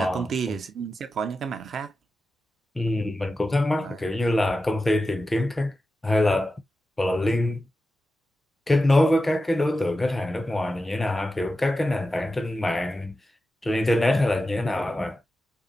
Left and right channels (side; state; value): both; normal; correlation 0.92